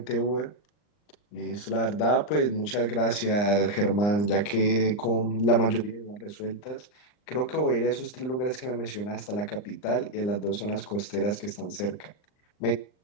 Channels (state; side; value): late; right; 39 ms